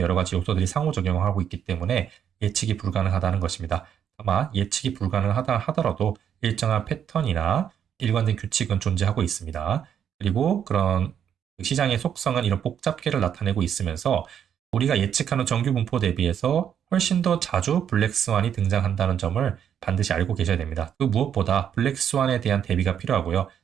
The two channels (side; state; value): left; quieter; 8.8 dB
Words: 가지 요소들이 상호작용을 하고 있기 때문에 예측이 불가능하다는 것입니다. 다만 예측이 불가능하다 하더라도 일정한 패턴이나 일관된 규칙은 존재하고 있습니다. 그리고 그런 시장의 속성은 이런 복잡계를 나타내고 있으면서 우리가 예측하는 정규 분포 대비해서 훨씬 더 자주 블랙스완이 등장한다는 점을 반드시 알고 계셔야 됩니다. 그 무엇보다 블랙스완에 대한 대비가 필요하고요.